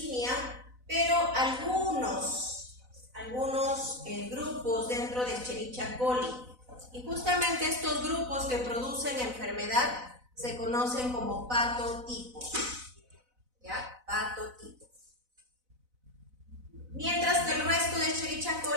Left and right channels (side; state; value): left; late; 4.0 ms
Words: pero algunos grupos dentro de Escherichia coli. Y justamente estos grupos que producen enfermedad se conocen como patotipos, ¿ya? Patotipos. Mientras que el resto de Escherichia